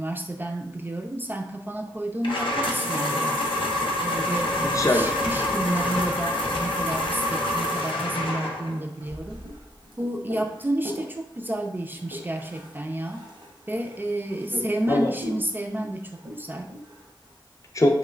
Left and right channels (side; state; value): both; normal; correlation 0.70